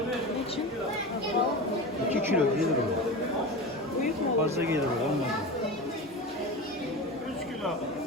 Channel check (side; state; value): both; normal; correlation 0.27